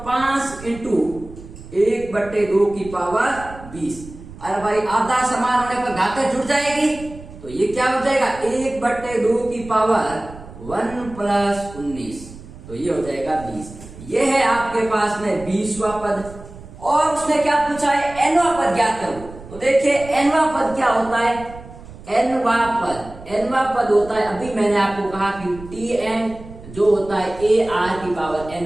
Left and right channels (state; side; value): noise; right; rumble, 16 dB below the sound